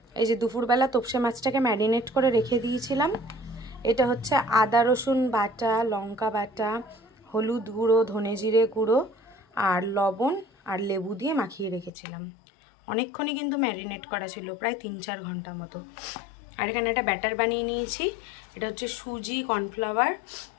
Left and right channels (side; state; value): right; drops out; at 11.9 s